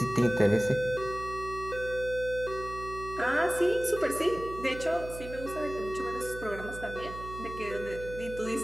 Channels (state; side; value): noise; right; hum, 12 dB below the sound